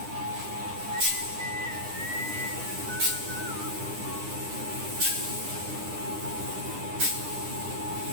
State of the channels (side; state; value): left; late; 9.9 ms